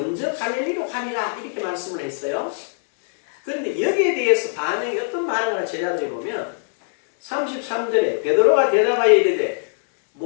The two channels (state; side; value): silent; right; digital silence